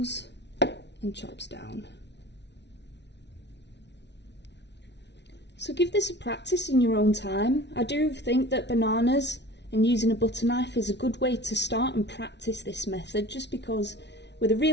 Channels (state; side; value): late; right; 0.50 ms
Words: and chops down. So give this a practice in your own time. I do think that bananas and using a butter knife is a good way to start and practice this method, just because with a